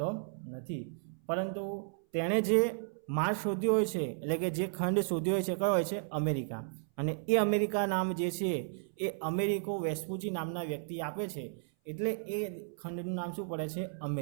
નથી. પરંતુ તેણે જે માર્ગ શોધ્યો હોય છે, એટલે કે જે ખંડ શોધ્યો હોય છે, કયો હોય છે? અમેરિકા. અને એ અમેરિકા નામ જે છે એ અમેરિકો વેસ્પુચી નામના વ્યક્તિ આપે છે, એટલે એ ખંડનું નામ શું પડે છે?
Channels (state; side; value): silent; left; 55 dB below the other